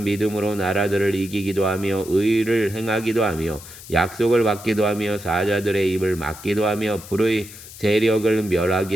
믿음으로 나라들을 이기기도 하며 의를 행하기도 하며 약속을 받기도 하며 사자들의 입을 막기도 하며 불의 세력을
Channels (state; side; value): noise; left; hiss, 16 dB below the sound